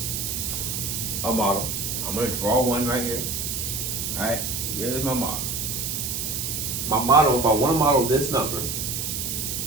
a model. I'm going to draw one right here. All right, here's my model. My model, if I want to model this number,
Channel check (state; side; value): noise; right; hiss, 2 dB below the sound